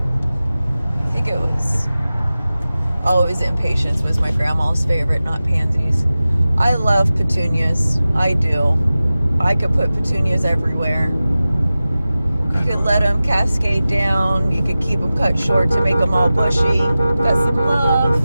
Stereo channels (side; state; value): both; inverted; correlation -0.96